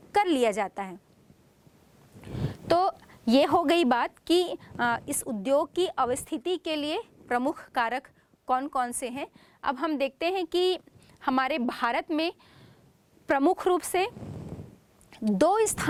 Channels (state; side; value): identical; both; correlation 1.00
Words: कर लिया जाता है। तो ये हो गई बात कि इस उद्योग की अवस्थिति के लिए प्रमुख कारक कौन कौन से हैं। अब हम देखते हैं कि हमारे भारत में प्रमुख रूप से 2